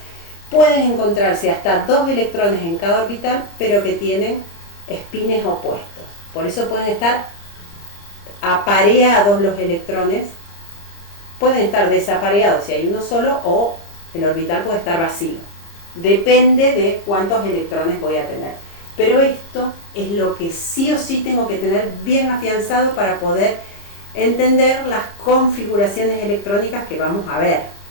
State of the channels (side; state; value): right; late; 30 ms